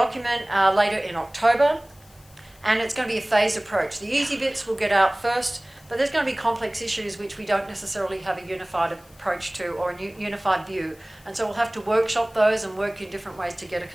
later in October, and it's going to be a phased approach. The easy bits will get out first, but there's going to be complex issues which we don't necessarily have a unified approach to or a unified view. And so we'll have to workshop those and work in different ways to get a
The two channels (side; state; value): left; noise; hiss, 27 dB below the sound